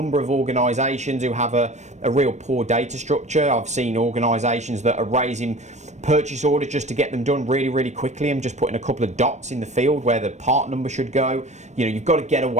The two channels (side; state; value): left; late; 0.34 ms